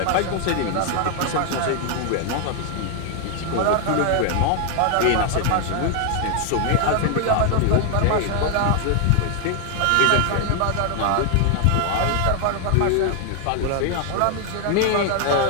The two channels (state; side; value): different; both; correlation 0.00